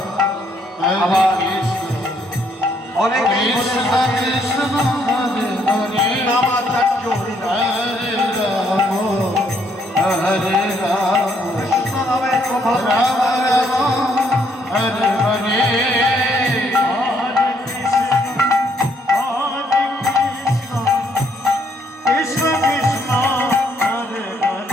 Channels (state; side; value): normal; both; correlation 0.70